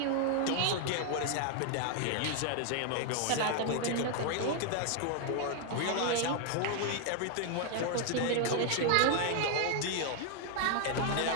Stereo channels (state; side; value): different; both; correlation 0.00